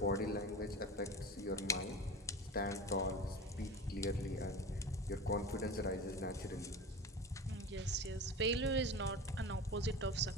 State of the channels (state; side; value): normal; both; correlation 0.30